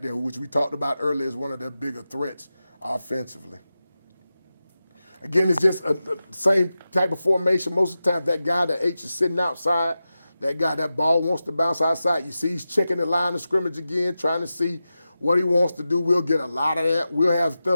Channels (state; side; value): inverted; both; correlation -0.93